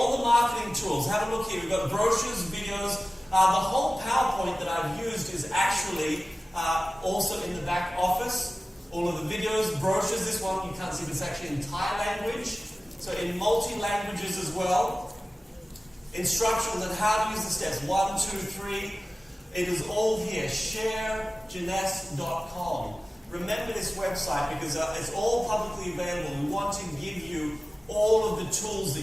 the marketing tools. Have a look here. We've got brochures, videos. The whole PowerPoint that I've used is actually also in the back office. All of the videos, brochures. This one you can't see, but it's actually in Thai language. So in multi-languages as well. Instructions on how to use the steps. 1, 2, 3. It is all here. Sharejeunesse.com. Remember this website because it's all publicly available. We want to give you all of the tools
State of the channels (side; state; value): both; normal; correlation 0.97